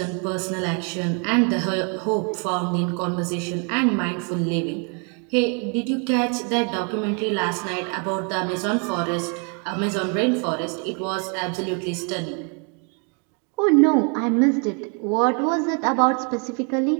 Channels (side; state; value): left; quieter; 37.4 dB